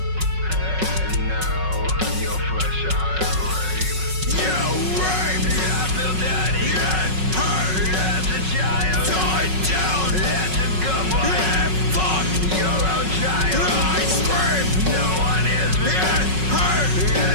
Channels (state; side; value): late; left; 5.4 ms